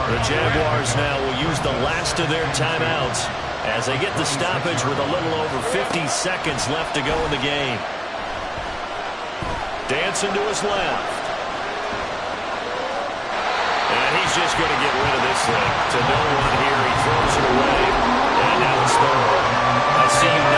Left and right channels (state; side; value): identical; both; correlation 1.00